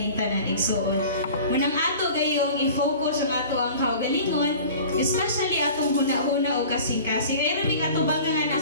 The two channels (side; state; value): both; inverted; correlation -0.42